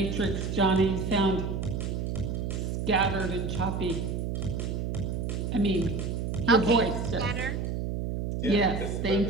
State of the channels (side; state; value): right; noise; hum, 2 dB below the sound